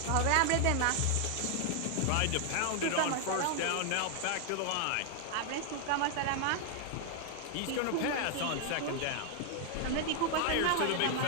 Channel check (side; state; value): both; different; correlation 0.00